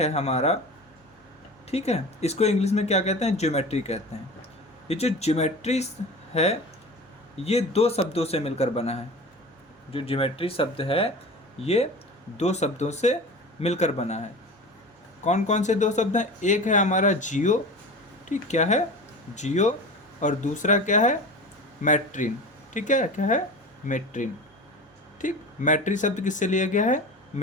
हमारा, ठीक है, इसको इंग्लिश में क्या कहते हैं, ज्योमेट्री कहते हैं। ये जो ज्योमेट्री है, ये दो शब्दों से मिलकर बना है। जो ज्योमेट्री शब्द है, ये दो शब्दों से मिलकर बना है। कौन कौन से दो शब्द हैं? एक है हमारा जियो, ठीक, क्या है, जियो, और दूसरा क्या है, मैट्रिन, ठीक है, क्या है, मेट्रिन, ठीक। मैट्री शब्द किससे लिया गया है,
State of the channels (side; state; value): both; normal; correlation 0.33